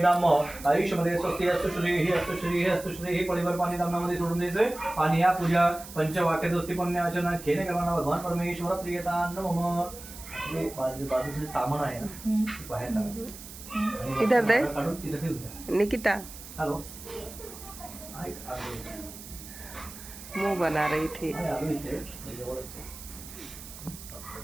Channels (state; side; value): noise; right; hiss, 14 dB below the sound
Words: आयुष्यमध्ये स्वस्ति अस्तु श्रीः अस्तु श्रीः अस्तु श्रीः पळीवर पाणी दामनामध्ये सोडून द्यायचं आणि या पूजा पंचवाक्य दोस्ती पुण्याचना केने करणार भगवान परमेश्वर प्रियतान मम हे बाजूचे तामण आहे ना बाहेर काढा. इधर दे काढून तिथे ठेवू द्या. निकिता हॅलो मुंह बना रही थी आलो इथे जवळच आहे.